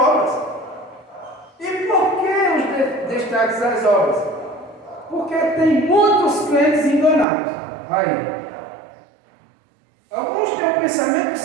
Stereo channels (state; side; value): drops out; left; at 7.2 s